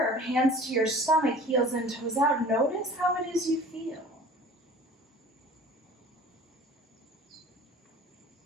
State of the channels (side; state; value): both; normal; correlation 0.44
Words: hands to your stomach, heels and toes out. Notice how it is you feel.